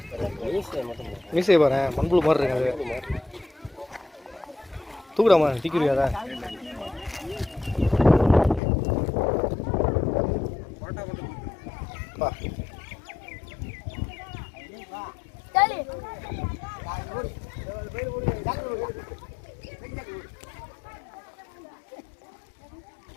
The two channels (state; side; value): drops out; right; at 8.6 s